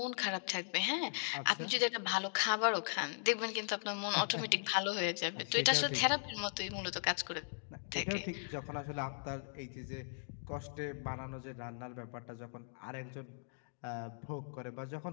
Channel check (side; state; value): right; silent; digital silence